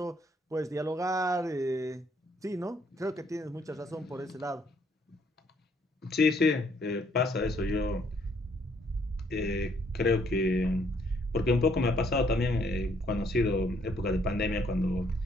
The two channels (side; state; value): both; normal; correlation 0.67